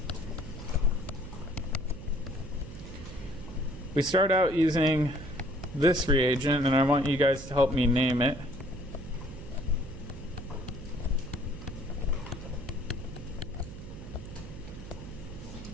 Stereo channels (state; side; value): noise; right; hum, 12 dB below the sound